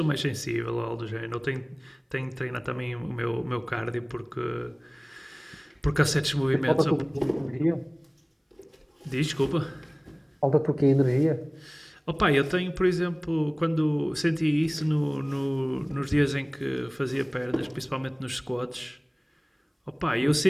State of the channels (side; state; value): both; identical; correlation 1.00